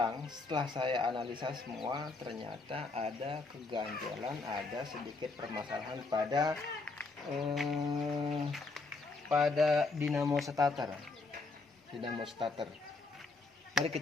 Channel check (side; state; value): right; quieter; 3.7 dB